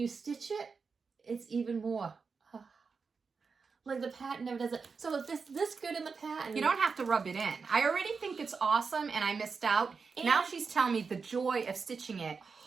stitch it, it's even more. Like, the pattern never does it. So if this good in the pattern... You don't have to rub it in. I already think it's awesome, and I missed out. And now she's telling me the joy of stitching it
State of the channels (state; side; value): quieter; left; 5.1 dB